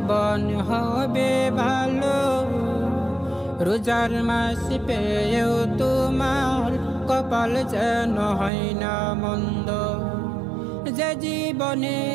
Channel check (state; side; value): drops out; left; at 8.5 s